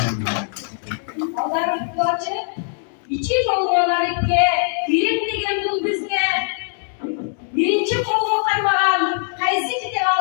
Allah'ın kulaçı, içi dolmalar ikke, bilim degen bul bizge. Birinci kolunu kaymaran, kaysi kitap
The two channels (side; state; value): right; silent; digital silence